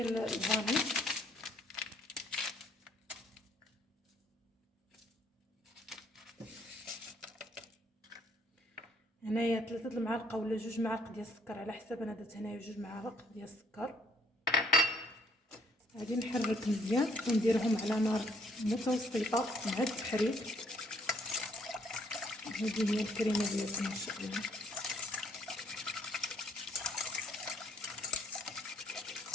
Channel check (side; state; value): both; normal; correlation 0.65